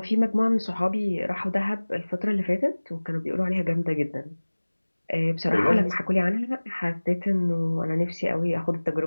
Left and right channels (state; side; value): inverted; both; correlation -1.00